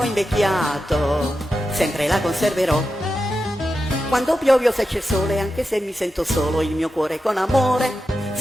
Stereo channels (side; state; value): both; normal; correlation 0.90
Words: invecchiato, sempre la conserverò. Quando piove o se c'è sole, anche se mi sento solo, il mio cuore con amore